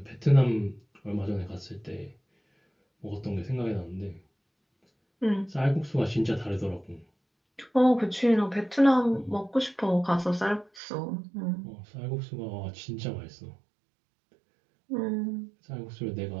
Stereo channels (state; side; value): drops out; left; at 10.8 s